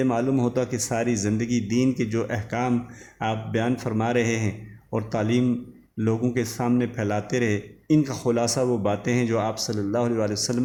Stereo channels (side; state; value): both; identical; correlation 1.00